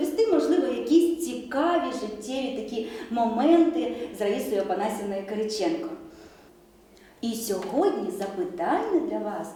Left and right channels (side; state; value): both; identical; correlation 1.00